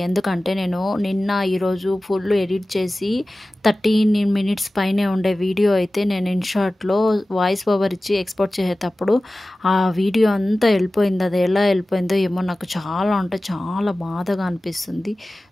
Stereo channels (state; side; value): normal; both; correlation 0.97